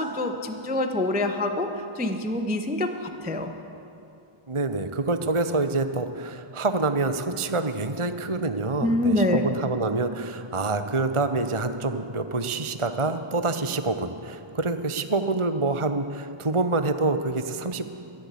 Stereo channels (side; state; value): left; late; 1.4 ms